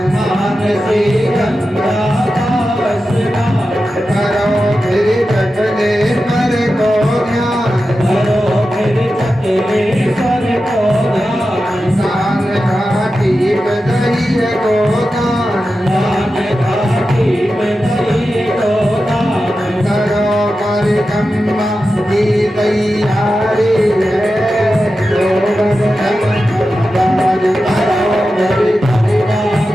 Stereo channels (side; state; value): both; normal; correlation 0.92